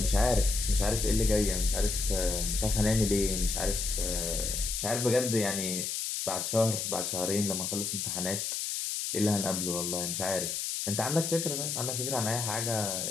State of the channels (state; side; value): noise; left; hiss, 2 dB below the sound